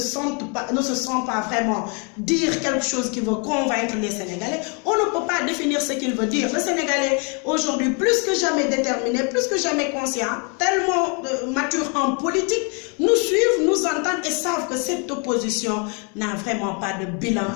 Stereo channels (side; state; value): right; quieter; 35.3 dB